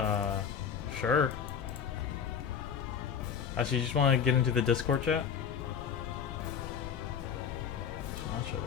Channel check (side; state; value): right; quieter; 7.5 dB